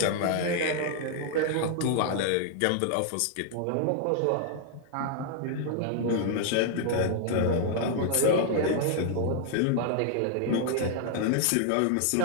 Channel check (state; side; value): different; both; correlation 0.00